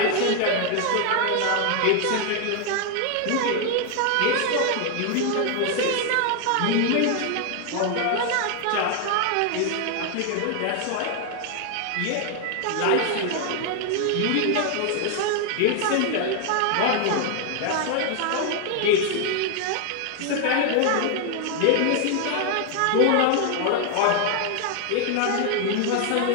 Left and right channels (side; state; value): both; different; correlation 0.00